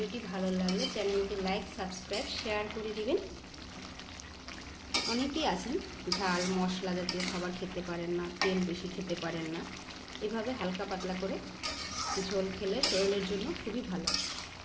ভালো লাগলে চ্যানেলটি লাইক সাবস্ক্রাইব শেয়ার করে দিবেন। অনেকেই আছেন ঝাল মশলা জাতীয় খাবার খেতে পারেন না, তেল বেশি খেতে পারেন না, এভাবে হালকা পাতলা করে ঝোল খেলে শরীরের জন্য খুবই ভালো।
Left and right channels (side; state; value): both; identical; correlation 1.00